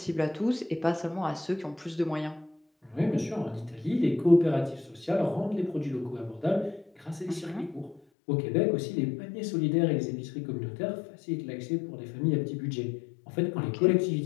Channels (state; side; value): drops out; right; at 8.0 s